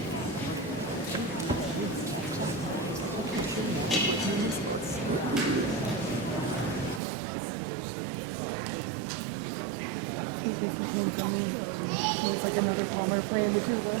It's like another Palmer playing the tuba.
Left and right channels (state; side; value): drops out; left; at 7.0 s